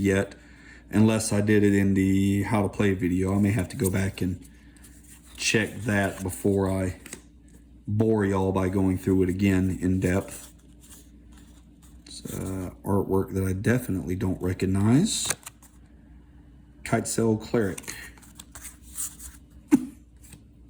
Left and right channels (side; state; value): both; identical; correlation 1.00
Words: unless I did it in the how to play video. I may have to go back and check that before I bore y'all by going through it again in depth. It's artwork that I definitely don't recognize. Kitesail Cleric.